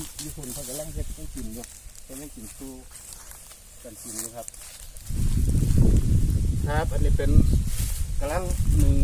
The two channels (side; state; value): both; identical; correlation 1.00